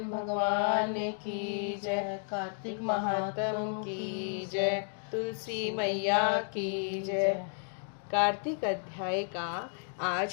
भगवान की जय। कार्तिक महात्म की जय। तुलसी मैया की जय। कार्तिक अध्याय का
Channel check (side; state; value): right; silent; 56 dB below the other